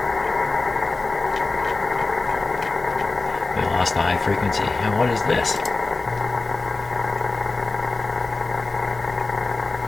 We lost the high frequency. And what is this?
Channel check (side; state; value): right; quieter; 3.6 dB